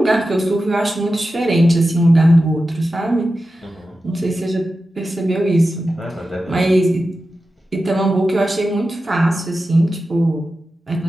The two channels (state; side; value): normal; both; correlation 0.92